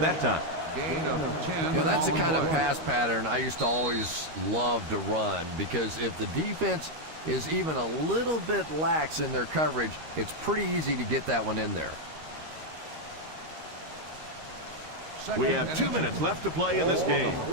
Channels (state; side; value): late; left; 13 ms